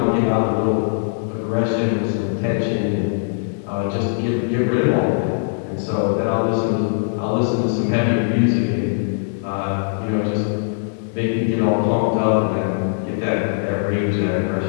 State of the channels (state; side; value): silent; right; digital silence